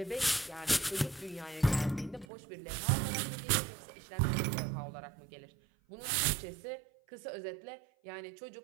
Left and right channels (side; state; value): left; drops out; at 2.2 s